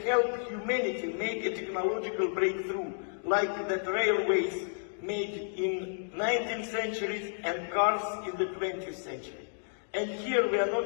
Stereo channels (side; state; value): right; silent; digital silence